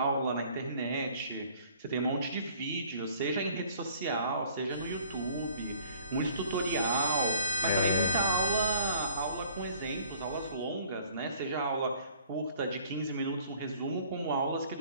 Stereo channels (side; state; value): both; inverted; correlation -0.55